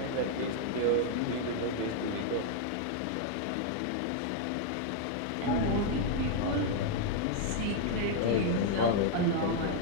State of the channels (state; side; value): different; both; correlation 0.00